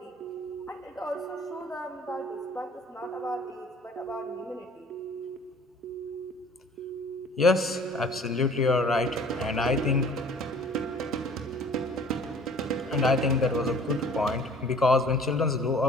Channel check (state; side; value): normal; both; correlation 0.50